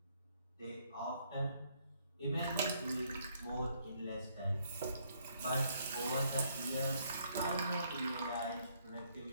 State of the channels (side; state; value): both; inverted; correlation -0.69